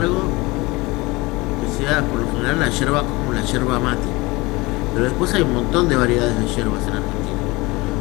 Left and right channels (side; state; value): right; quieter; 23.0 dB